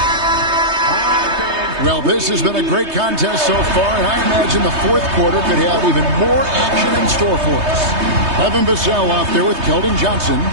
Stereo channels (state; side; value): late; left; 3.2 ms